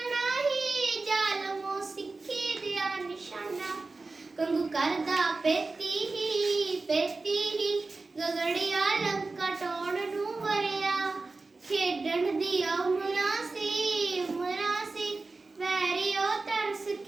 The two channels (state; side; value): quieter; left; 3.6 dB